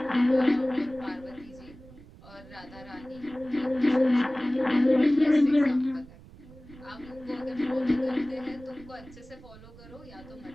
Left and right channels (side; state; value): right; noise; rumble, 20 dB below the sound